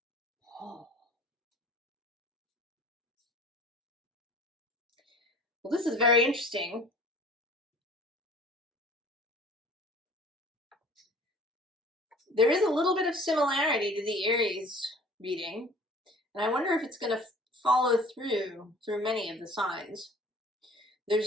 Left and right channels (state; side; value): normal; both; correlation 0.48